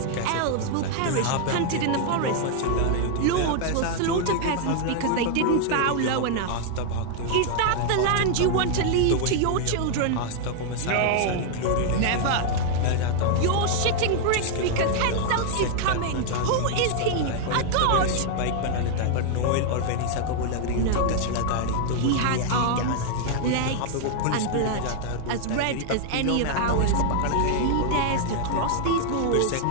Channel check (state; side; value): different; both; correlation 0.00